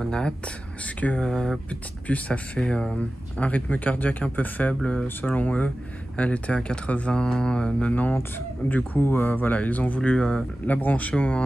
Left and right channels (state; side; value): normal; both; correlation 0.95